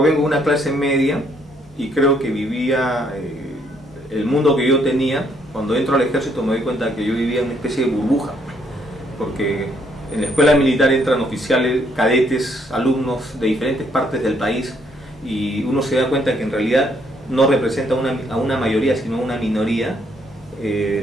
de una clase media y creo que vivía el mundo que yo tenía. Cuando entro al ejército me doy cuenta que yo vivía en una especie de burbuja, porque en la escuela militar entran oficiales, cadetes, alumnos de diferentes partes del país y uno se da cuenta que en realidad no representa a una mayoría, sino a una minoría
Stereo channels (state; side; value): normal; both; correlation 0.70